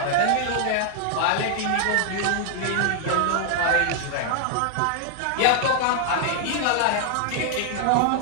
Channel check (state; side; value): different; both; correlation 0.00